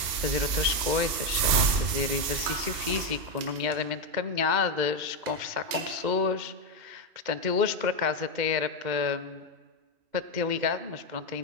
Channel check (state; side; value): late; left; 2.1 ms